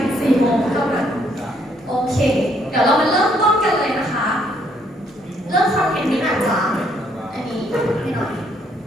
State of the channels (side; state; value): both; normal; correlation 0.69